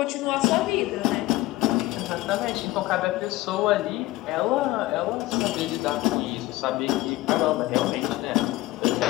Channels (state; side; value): quieter; right; 17.9 dB